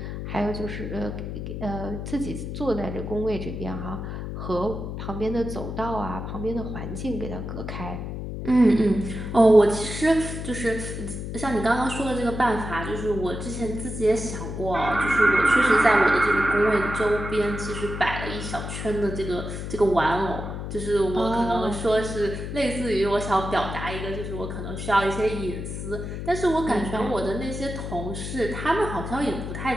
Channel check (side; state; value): left; noise; hum, 6 dB below the sound